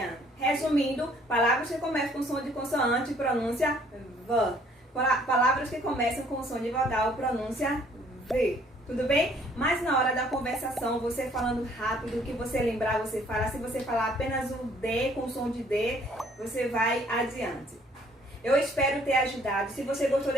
Resumindo, palavras que começam com som de consoante, pronúncia V. Palavras que começam com som de vogal, pronúncia V. Tudo bem? Mas na hora da conversação, você falando rápido, o que você lembrar, você fala. Se você falar apenas o D com som de D, você vai adiante. Eu espero ter ajudado. Se você gostou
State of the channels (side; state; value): both; normal; correlation 0.61